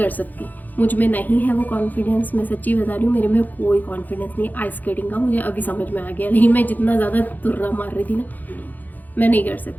सकती, मुझ में नहीं है वो कॉन्फिडेंस। मैं सच्ची बता रही हूँ, मेरे में कोई कॉन्फिडेंस नहीं आइस स्केटिंग का। मुझे अभी समझ में आ गया, लेकिन मैं जितना ज़्यादा तुर्रा मार रही थी ना, मैं नहीं कर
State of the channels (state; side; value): late; right; 0.083 ms